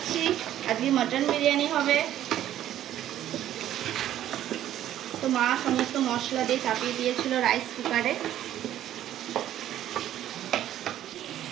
আজকে মটন বিরিয়ানি হবে। তো মা সমস্ত মশলা দিয়ে চাপিয়ে দিয়েছিল রাইস কুকারে।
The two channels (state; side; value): quieter; left; 12.1 dB